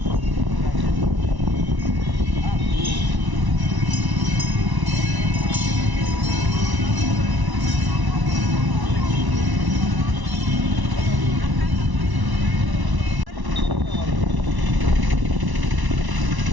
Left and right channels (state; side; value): late; left; 1.1 ms